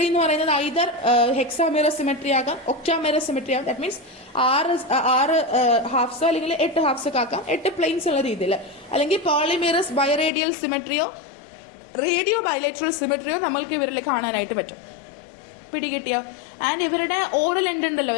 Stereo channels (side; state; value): right; drops out; at 10.3 s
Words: എന്ന് പറയുന്നത് ഐദർ ഹെക്സാമിറർ സിമെട്രി ആകാം, ഒക്ടാമിറർ സിമെട്രി ആകാം. ദാറ്റ് മീൻസ് ആറ് ഹാഫ്സോ അല്ലെങ്കിൽ 8 ഹാഫ്സോ ഒക്കെ ആക്കാം, 8 പ്ലെയിൻസ് ഉള്ള രീതിയിൽ. അല്ലെങ്കിൽ പോളിമിറസ് ബൈറേഡിയൽ സിമെട്രിയോ റേഡിയോ ബൈലേറ്ററൽ സിമെട്രിയോ നമ്മൾക്ക് ഇവരിൽ കാണാനായിട്ട് പറ്റും. പിടികിട്ടിയോ? ആൻഡ് ഇവരുടെ ഓറൽ എൻഡ് ഉണ്ടല്ലോ,